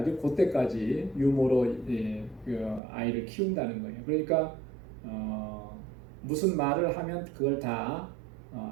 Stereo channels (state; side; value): drops out; left; at 2.8 s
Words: 그때까지 유모로 그 아이를 키운다는 거예요. 그러니까 무슨 말을 하면 그걸 다